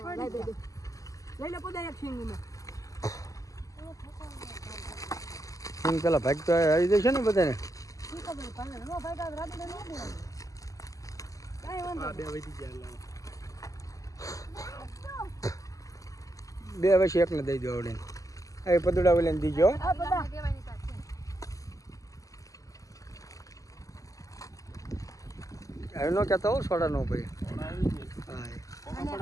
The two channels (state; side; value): late; right; 0.16 ms